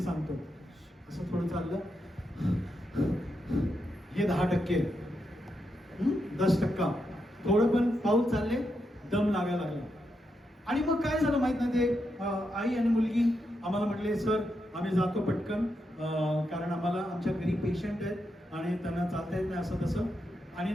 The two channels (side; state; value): both; normal; correlation 0.84